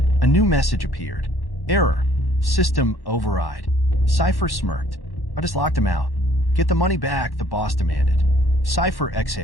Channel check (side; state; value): right; late; 1.1 ms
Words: A new message appeared. Error. System override. Cipher smirked. I just locked him out. Get the money back, the boss demanded. Cipher